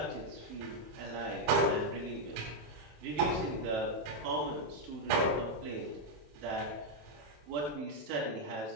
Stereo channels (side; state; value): left; late; 27 ms